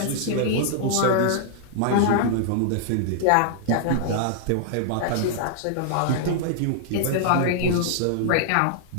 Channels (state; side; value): different; both; correlation -0.01